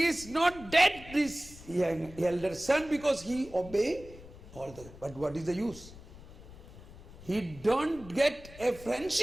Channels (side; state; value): left; noise; rumble, 18 dB below the sound